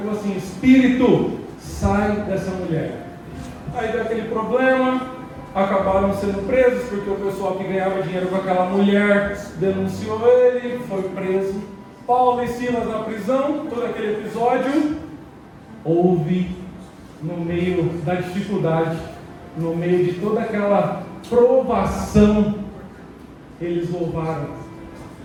assim, espírito, sai dessa mulher. Aí deu aquele problema, acabaram sendo presos, porque o pessoal que ganhava dinheiro com aquela mulher denunciou ele, foi preso. Paulo e Silas na prisão, todo aquele episódio. Houve, no meio da dificuldade, no meio de toda aquela provação, eles louvaram.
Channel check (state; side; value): identical; both; correlation 1.00